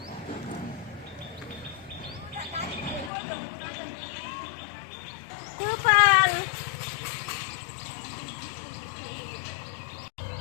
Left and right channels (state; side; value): drops out; right; at 3.1 s